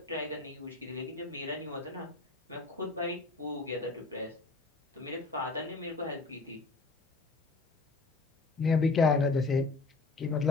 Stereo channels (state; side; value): quieter; right; 3.7 dB